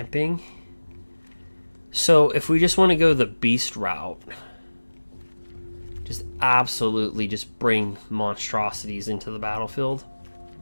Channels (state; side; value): inverted; both; correlation -1.00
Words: So if we just want to go the beast route, just absolutely just bring monstrosities into the battlefield.